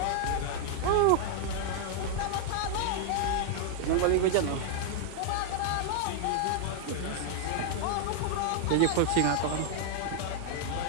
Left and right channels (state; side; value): different; both; correlation 0.00